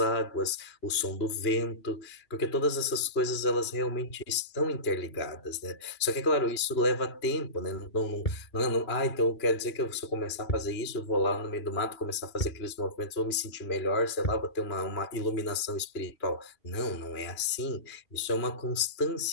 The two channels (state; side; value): late; right; 2.9 ms